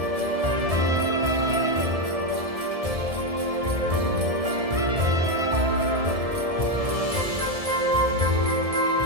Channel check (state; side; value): late; left; 1.7 ms